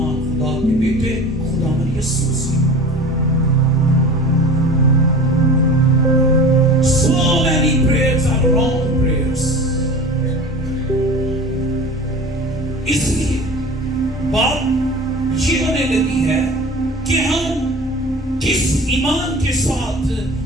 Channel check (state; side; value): normal; both; correlation 0.37